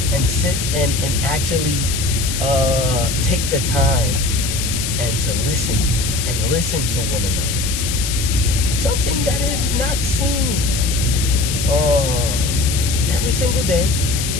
and sit and actually take the time and to listen to one another. Something that is not seen every single day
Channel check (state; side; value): noise; left; hiss, 4 dB below the sound